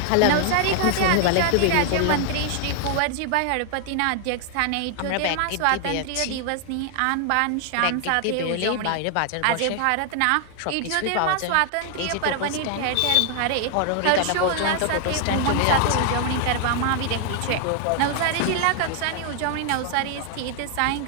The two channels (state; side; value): different; both; correlation 0.00